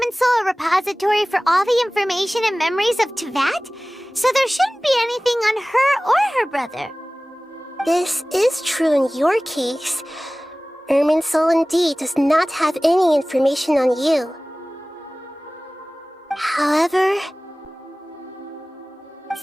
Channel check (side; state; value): both; normal; correlation 0.98